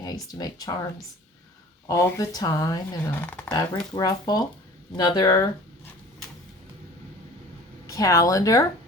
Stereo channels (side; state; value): both; normal; correlation 0.45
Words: I used to make charms all the time in a fabric ruffle. Another calendar